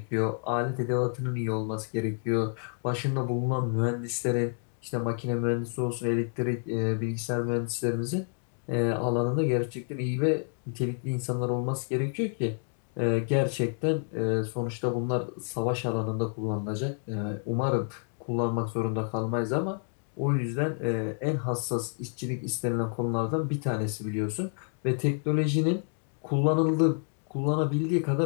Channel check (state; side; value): silent; right; 58 dB below the other